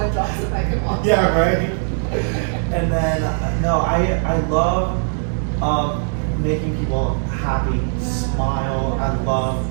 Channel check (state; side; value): silent; left; digital silence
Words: drops the mic and walks Yeah, off. right. And then no, I love making people happy, smile. I love